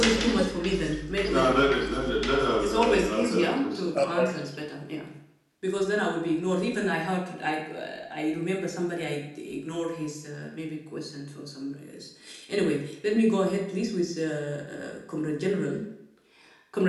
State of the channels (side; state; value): both; identical; correlation 1.00